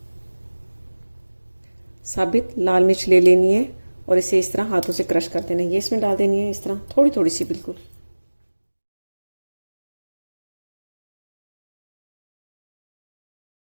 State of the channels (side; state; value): both; inverted; correlation -1.00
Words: साबित लाल मिर्च ले लेनी है और इसे इस तरह हाथों से क्रश कर देना है। ये इसमें डाल देनी है इस तरह थोड़ी थोड़ी सी, बिल्कुल।